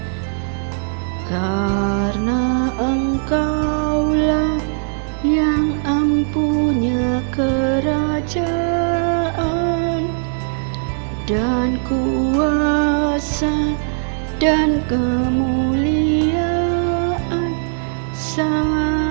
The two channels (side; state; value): left; silent; digital silence